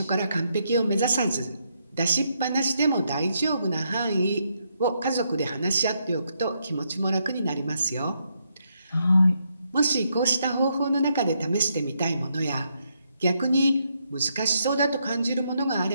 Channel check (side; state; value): both; inverted; correlation -0.78